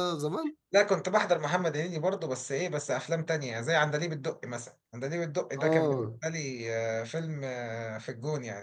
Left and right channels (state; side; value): identical; both; correlation 1.00